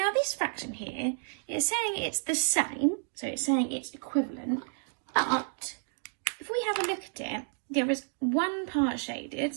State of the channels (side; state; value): left; silent; digital silence